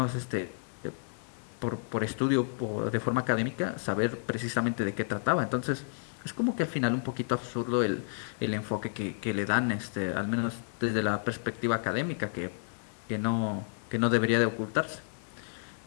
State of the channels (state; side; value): silent; right; digital silence